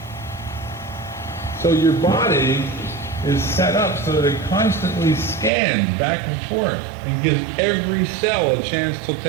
So your body is set up so that it constantly scans back and forth and gives every cell a chance to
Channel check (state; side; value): drops out; left; at 5.5 s